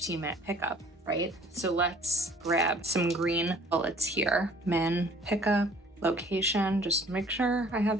pickup, right? So let's grab some green bullets here. Min pickup, location, just make sure I have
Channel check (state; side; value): normal; both; correlation 0.54